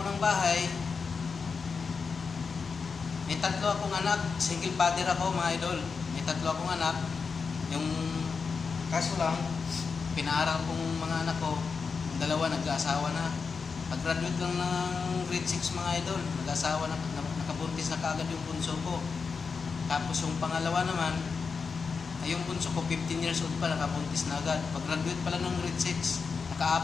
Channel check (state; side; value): quieter; right; 5.2 dB